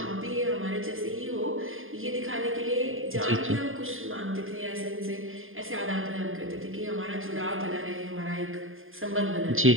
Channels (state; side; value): late; left; 0.59 ms